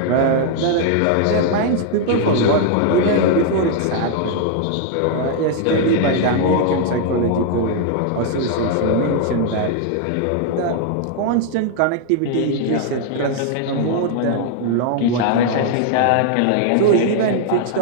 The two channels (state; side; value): different; both; correlation 0.00